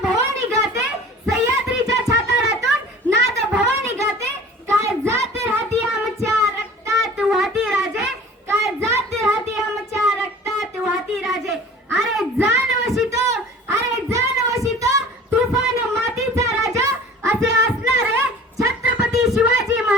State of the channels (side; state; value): both; normal; correlation 0.44